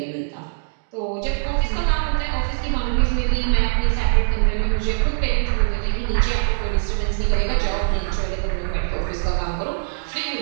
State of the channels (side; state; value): left; silent; digital silence